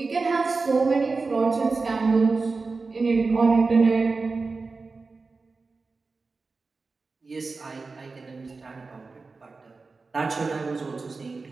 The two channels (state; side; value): quieter; left; 4.1 dB